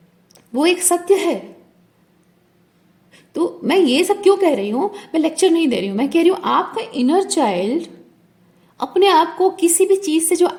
वो एक सत्य है। तो मैं ये सब क्यों कह रही हूं? मैं लेक्चर नहीं दे रही हूं, मैं कह रही हूं आपका इनर चाइल्ड अपने आप को किसी भी चीज से जो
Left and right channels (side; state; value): both; identical; correlation 1.00